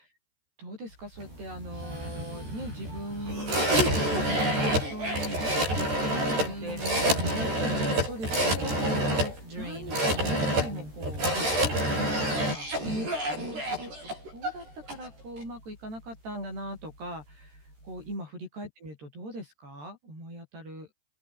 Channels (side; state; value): left; late; 13 ms